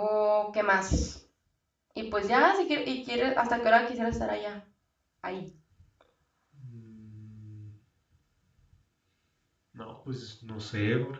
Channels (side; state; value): both; identical; correlation 1.00